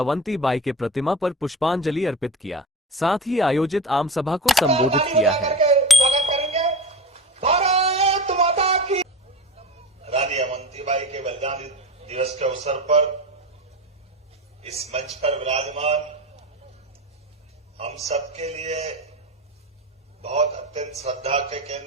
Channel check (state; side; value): normal; both; correlation 0.28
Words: के प्रतिमा पर पुष्पांजलि अर्पित किया, साथ ही आयोजित आम सभा को संबोधित किया है। स्वागत करेंगे भारत माता की। रानी अवंतीबाई के बलिदान दिवस के अवसर पर इस मंच पर विराजमान हम सबके लिए बहुत अत्यंत श्रद्धा के